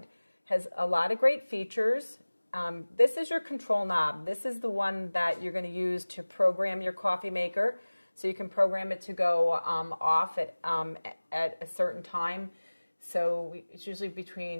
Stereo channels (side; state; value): both; inverted; correlation -1.00